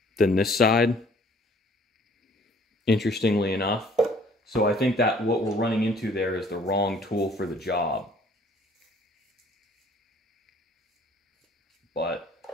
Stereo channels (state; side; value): normal; both; correlation 0.57